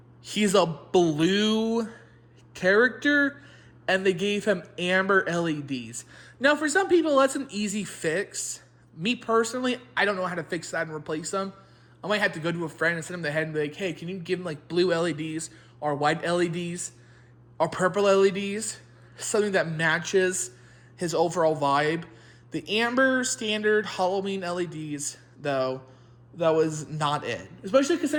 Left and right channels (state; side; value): identical; both; correlation 1.00